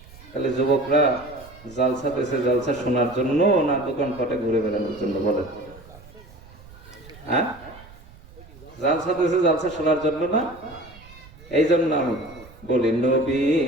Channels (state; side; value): noise; right; rumble, 21 dB below the sound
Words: তাহলে যুবকরা জালসা পেয়েছে জালসা শোনার জন্য না দোকানপাটে ঘুরে বেড়ানোর জন্য? বলেন। হ্যাঁ, জালসা পেয়েছে জালসা শোনার জন্য না? এই জন্য আমি বলি,